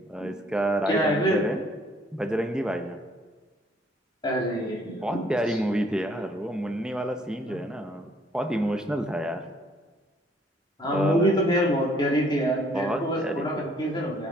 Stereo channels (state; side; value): normal; both; correlation 0.62